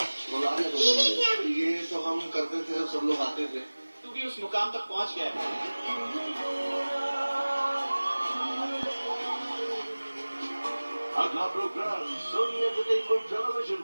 ये तो हम करते थे जब सब लोग आते थे. तू भी उस मुकाम तक पहुंच गया है. अगला प्रोग्राम सोनी एंटरटेनमेंट टेलीविजन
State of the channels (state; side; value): inverted; both; correlation -1.00